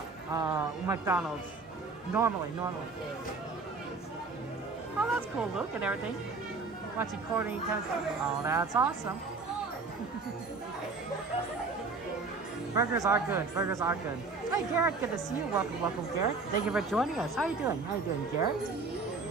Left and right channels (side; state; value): left; quieter; 4.1 dB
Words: McDonald's. Normally. Oh, that's cool, Luke, and everything. Watching Courtney tennis. Oh, that's awesome. Burgers are good. Hey, Garrett, good to see you. Welcome, Garrett. Thank you for joining us. How you doing, Garrett?